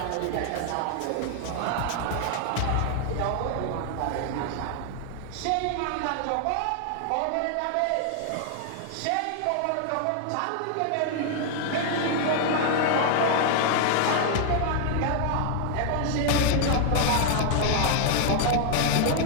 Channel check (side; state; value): both; different; correlation 0.00